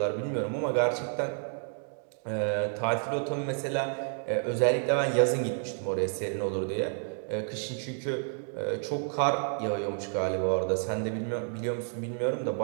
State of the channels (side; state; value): left; silent; 58 dB below the other